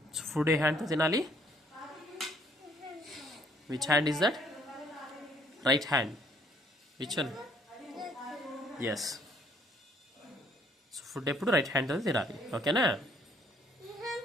So food ఏ హ్యాండ్తో తినాలి? Which hand is that? Right hand. Which one? Yes. So food ఎప్పుడు right హ్యాండ్తో తినాలి, ఓకేనా?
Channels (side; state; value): both; normal; correlation 0.64